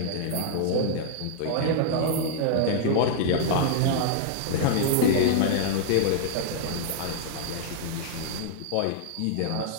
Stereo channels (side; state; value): both; different; correlation -0.01